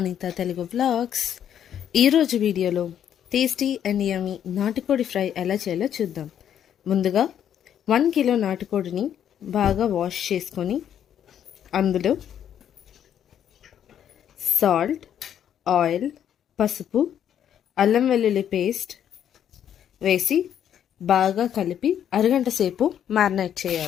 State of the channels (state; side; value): quieter; right; 9.6 dB